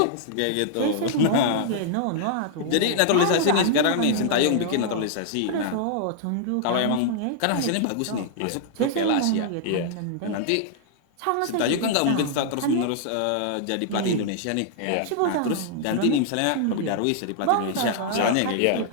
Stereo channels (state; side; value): different; both; correlation -0.01